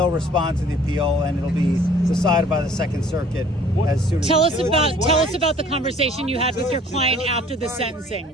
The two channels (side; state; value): both; normal; correlation 0.54